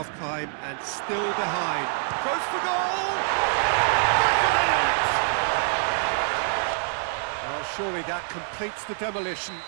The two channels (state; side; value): silent; left; 61 dB below the other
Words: and still behind. Goes for goal! Back of the net! Well, surely that completes the demolition,